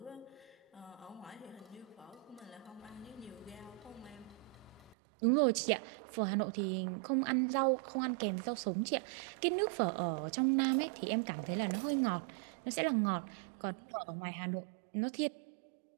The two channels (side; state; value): left; drops out; at 5.0 s